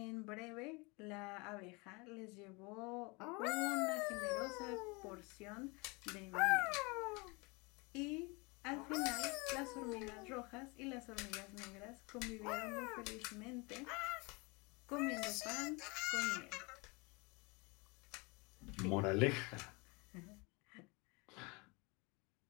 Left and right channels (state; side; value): quieter; right; 27.9 dB